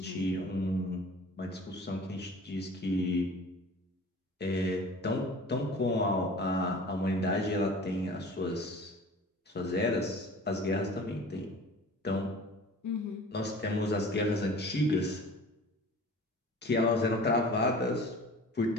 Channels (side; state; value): both; normal; correlation 0.43